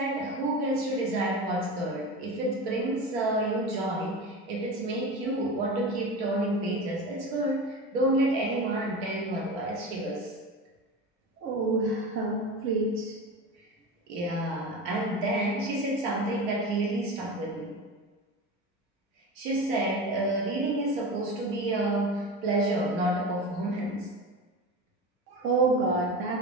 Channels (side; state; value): both; normal; correlation 0.28